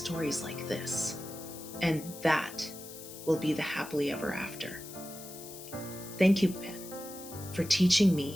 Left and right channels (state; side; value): noise; left; hiss, 14 dB below the sound